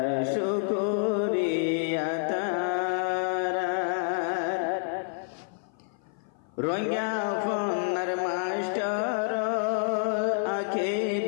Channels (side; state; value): right; silent; 55 dB below the other